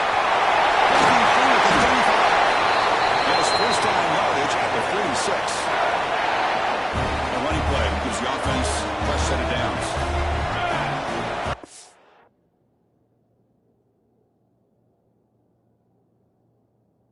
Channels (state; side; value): identical; both; correlation 1.00